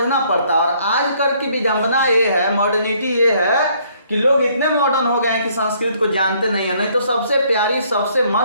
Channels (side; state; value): both; inverted; correlation -0.64